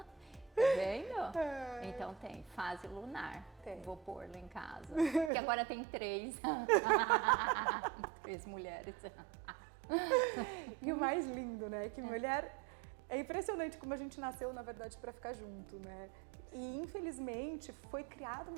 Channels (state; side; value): drops out; left; at 5.3 s